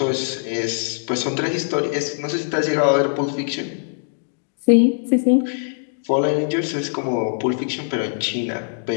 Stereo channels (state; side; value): silent; right; digital silence